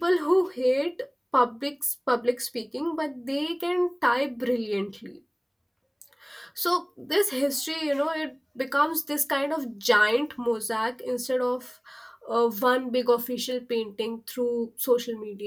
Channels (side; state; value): both; identical; correlation 1.00